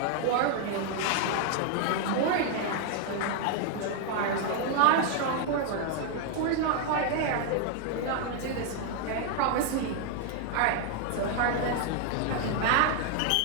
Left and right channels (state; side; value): different; both; correlation 0.00